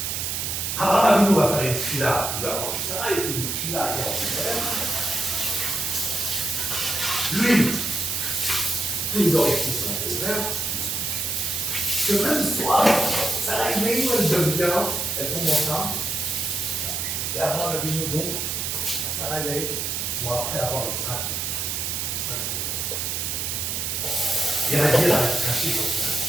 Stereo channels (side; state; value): right; noise; hiss, 2 dB below the sound